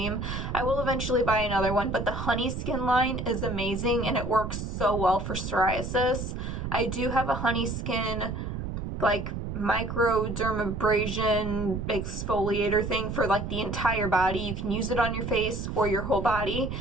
I will eventually buy another one, but the Honey Skin line is amazing, and it works so well for psoriasis. I do have a Honey Skin, like, microdermabrasion exfoliator thing for, like, the entire body. You can use it on your face or your whole body,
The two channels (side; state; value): right; noise; rumble, 5 dB below the sound